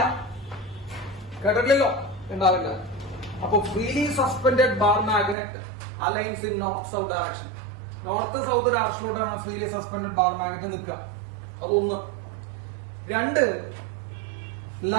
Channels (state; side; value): drops out; left; at 5.4 s